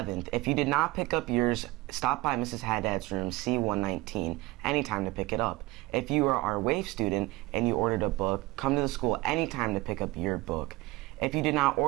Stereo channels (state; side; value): quieter; left; 21.0 dB